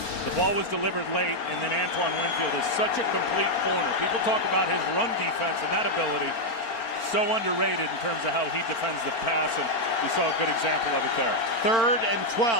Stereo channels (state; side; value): late; right; 4.4 ms